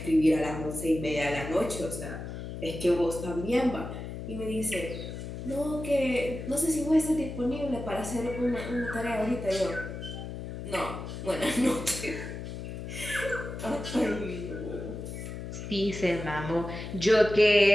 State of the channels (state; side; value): noise; left; hum, 8 dB below the sound